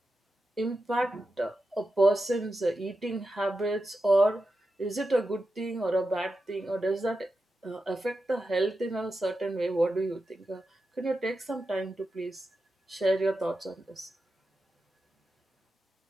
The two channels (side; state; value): both; normal; correlation 0.90